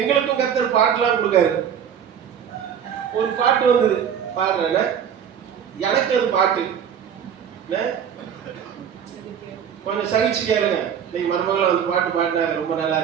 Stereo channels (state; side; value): quieter; left; 8.4 dB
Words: கர்த்தர் பாட்டுலாம் கொடுக்காரு. ஒரு பாட்டு வந்தது, பாடுறேன். எனக்கு அது பாட்டு கொஞ்சம் சகிச்சு கேளுங்க. இன்னைக்கு மருமகளை வந்து பாட்டு பாடினாங்க, ரொம்ப நல்லா